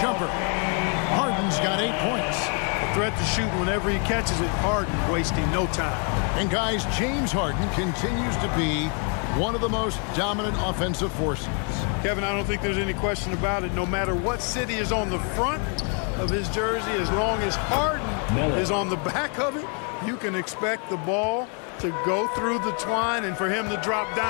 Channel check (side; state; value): right; quieter; 39.3 dB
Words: jumper. Harden's got 8 points. A threat to shoot whenever he catches it. Harden wasting no time. And guys, James Harden continues to be one of the most dominant offensive forces. Kevin, I don't think there's any question about it. No matter what city is on the front of his jersey, as long as Harden is on the back of it, you can expect the ball to go through the twine and for him to drop